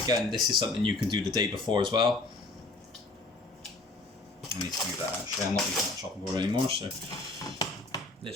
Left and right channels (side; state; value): right; quieter; 3.1 dB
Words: again, this is something you can do the day before as well. I need to move that actually, I'm not using that chopping board anymore, so